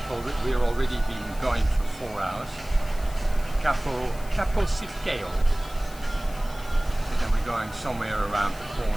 We've already been going for 4 hours. Capo Sicily. And then we're going somewhere around the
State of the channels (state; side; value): noise; left; hiss, 19 dB below the sound